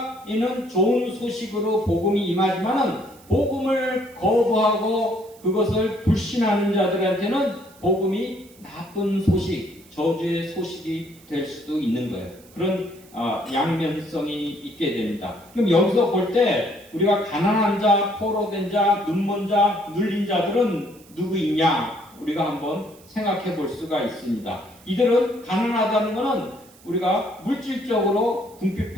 이는 좋은 소식으로 복음이 임하지만은 복음을 거부하고 그것을 불신하는 자들한테는 복음이 나쁜 소식, 저주의 소식이 될 수도 있는 거예요. 그런 양면성이 있게 됩니다. 그럼 여기서 볼 때 우리가 가난한 자, 포로된 자, 눈먼 자, 눌린 자들은 누구이냐 우리가 한번 생각해 볼 수가 있습니다. 이들은 가난하다는 것은 우리가 물질적으로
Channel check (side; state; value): right; noise; hiss, 25 dB below the sound